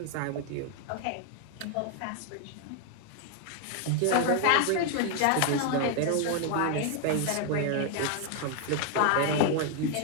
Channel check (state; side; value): different; both; correlation 0.00